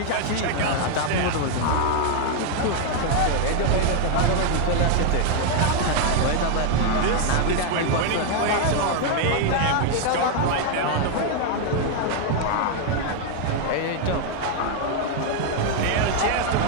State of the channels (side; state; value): both; different; correlation 0.00